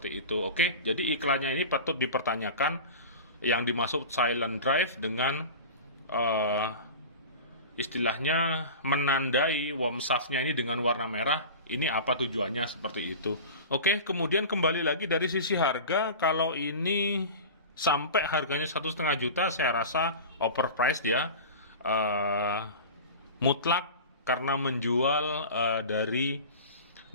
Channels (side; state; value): both; inverted; correlation -0.33